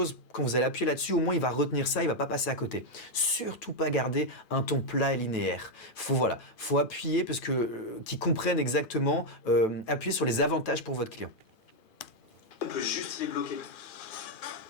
quand vous allez appuyer là-dessus, au moins il va retenir ça, il va pas passer à côté. Surtout pas garder un ton plat et linéaire. Faut appuyer parce que qu'ils comprennent exactement, appuyer sur les avantages pour votre client. On peut juste les bloquer.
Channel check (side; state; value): right; late; 2.4 ms